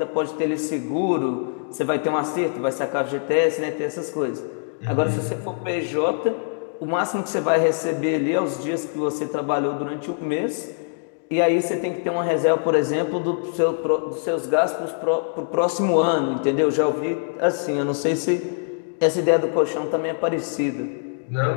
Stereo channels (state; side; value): silent; right; digital silence